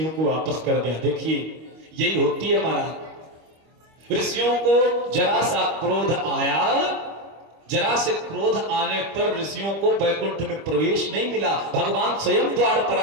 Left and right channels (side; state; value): left; late; 25 ms